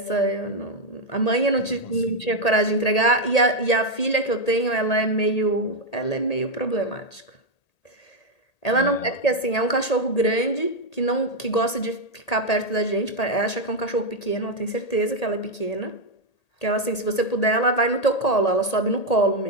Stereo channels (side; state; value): right; late; 1.8 ms